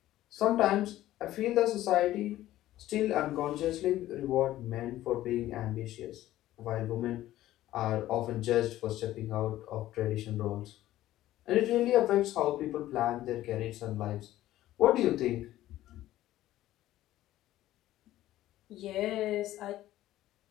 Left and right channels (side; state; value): right; quieter; 14.5 dB